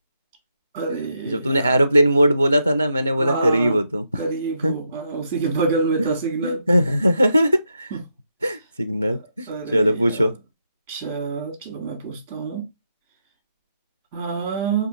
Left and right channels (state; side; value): inverted; both; correlation -0.81